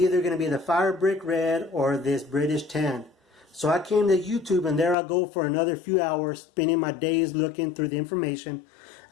either going to be the fire brick red or this British tan. So I came to YouTube, and there I go for another few hours, spending my days looking through the information.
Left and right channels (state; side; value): drops out; right; at 5.0 s